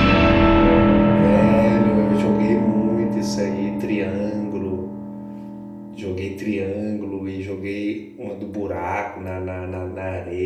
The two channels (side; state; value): both; identical; correlation 1.00